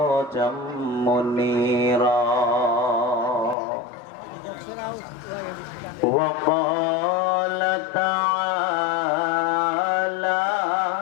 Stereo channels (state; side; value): drops out; right; at 3.6 s